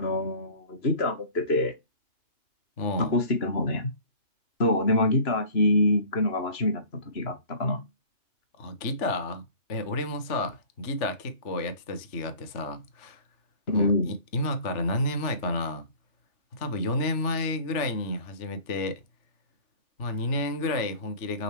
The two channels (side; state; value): right; late; 3.4 ms